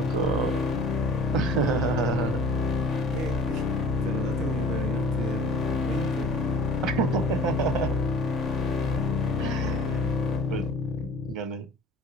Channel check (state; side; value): normal; both; correlation 0.46